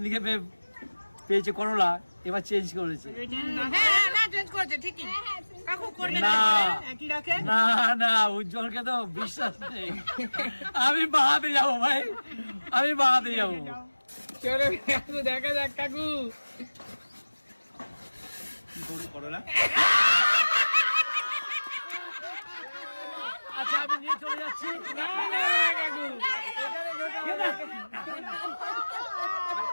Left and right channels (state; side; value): inverted; both; correlation -1.00